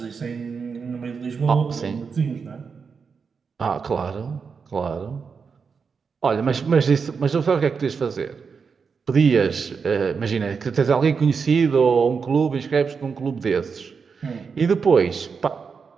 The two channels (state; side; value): quieter; left; 5.6 dB